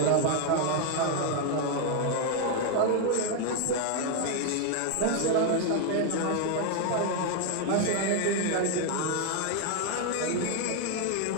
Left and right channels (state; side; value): different; both; correlation 0.01